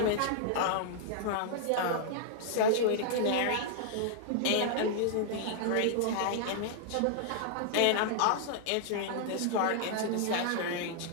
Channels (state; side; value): different; both; correlation -0.01